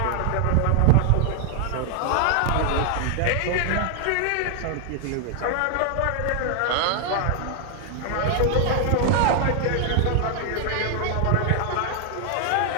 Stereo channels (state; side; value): different; both; correlation 0.00